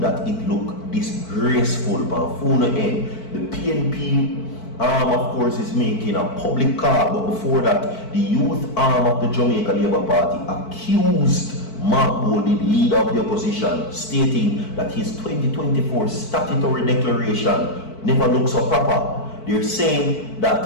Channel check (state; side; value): late; right; 4.5 ms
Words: it look disgraceful. But full end, the PNP of course, is making a public call, but before that, the youth arm of the Jamaica Labour Party accused Mark Golding, leader of the opposition, stating that his 2024 statutory declaration never looks so proper. They're saying